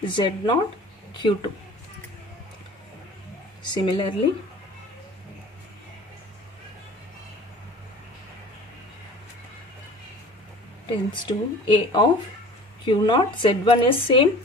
z naught, q2. Similarly, tends to a of q naught, z1 is same.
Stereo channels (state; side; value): normal; both; correlation 0.44